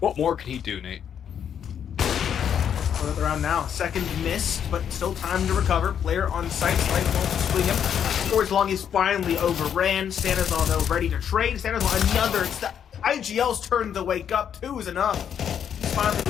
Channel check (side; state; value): right; quieter; 8.6 dB